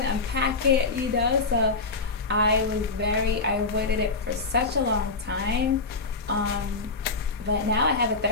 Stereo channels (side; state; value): right; quieter; 3.8 dB